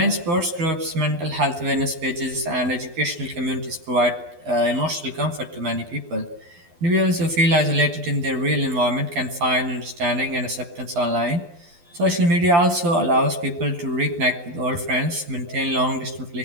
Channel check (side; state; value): left; late; 12 ms